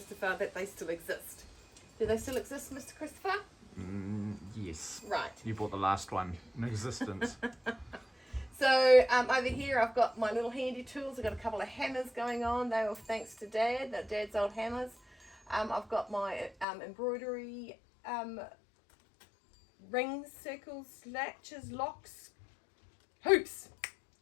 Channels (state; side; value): drops out; right; at 16.7 s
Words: that they still exist. Do they still exist, Mr. Christopher? Yes. Right. You bought the last one in existence. So over here I've got my little handy tools. I've got a couple of hammers going on. They were thanks to Dad, Dad's old hammers. I've got my embroidery rings, circles, latches, locks, hoops,